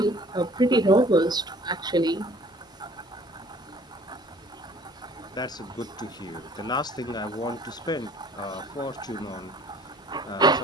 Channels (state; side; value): normal; both; correlation 0.53